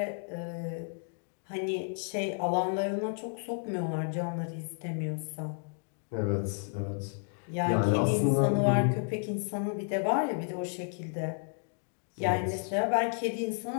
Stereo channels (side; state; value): right; silent; 57 dB below the other